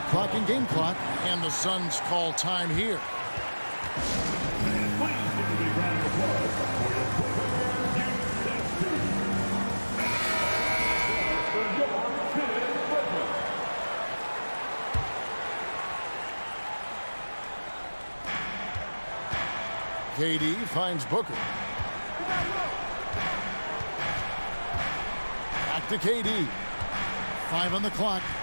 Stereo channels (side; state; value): both; inverted; correlation -1.00